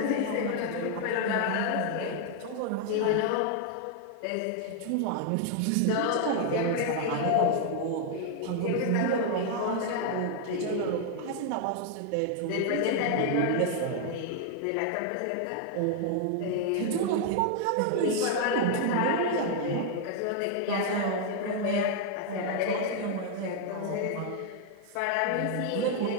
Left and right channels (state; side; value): different; both; correlation 0.00